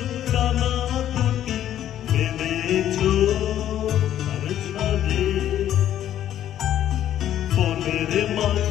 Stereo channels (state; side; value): quieter; right; 11.4 dB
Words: ডানা দুটি মেলেছো আর ছাদে বনের